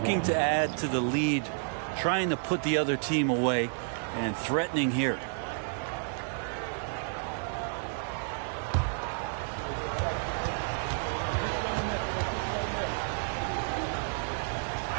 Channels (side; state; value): left; silent; digital silence